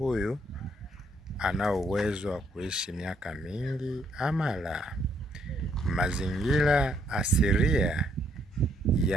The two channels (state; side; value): normal; both; correlation 0.71